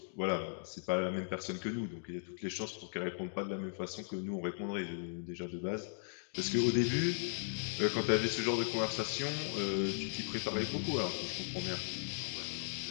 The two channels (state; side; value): silent; right; digital silence